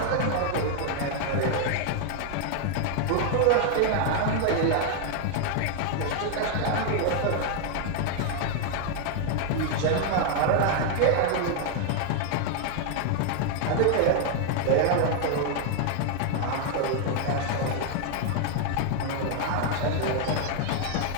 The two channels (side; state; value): both; different; correlation 0.00